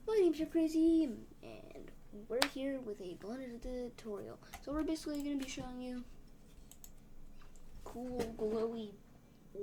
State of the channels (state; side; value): identical; both; correlation 1.00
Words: My name's JPcrazy, and we're here with a blended tutorial. So we're basically going to be showing you cool glowy